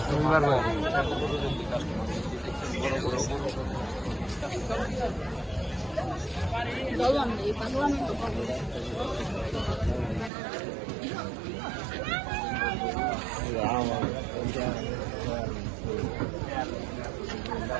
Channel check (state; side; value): drops out; left; at 10.3 s